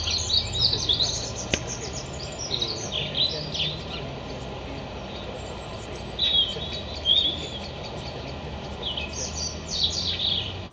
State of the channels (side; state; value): both; identical; correlation 1.00